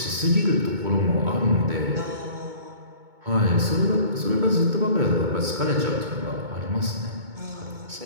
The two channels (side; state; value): left; late; 2.2 ms